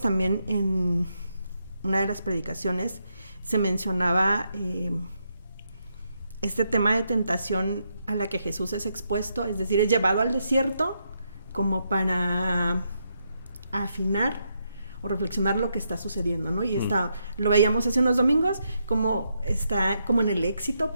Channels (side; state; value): both; inverted; correlation -0.80